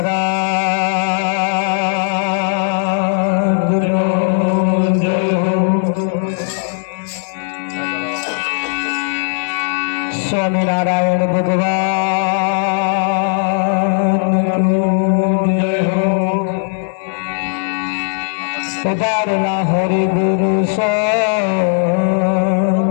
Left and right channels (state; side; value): silent; right; 63 dB below the other